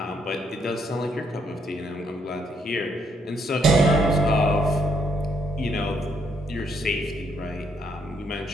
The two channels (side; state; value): both; normal; correlation 0.73